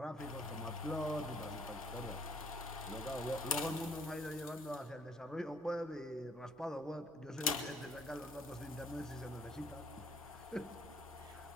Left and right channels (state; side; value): normal; both; correlation 0.62